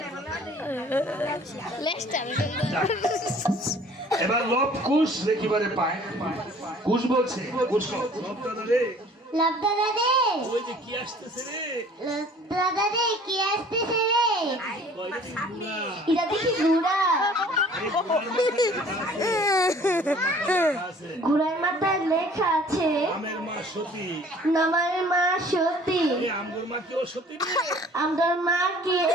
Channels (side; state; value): both; normal; correlation 0.52